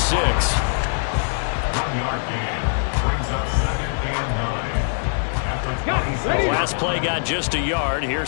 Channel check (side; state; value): right; silent; digital silence